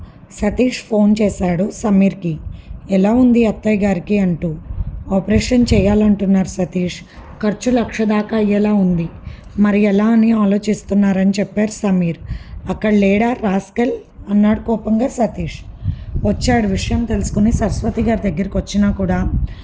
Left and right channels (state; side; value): identical; both; correlation 1.00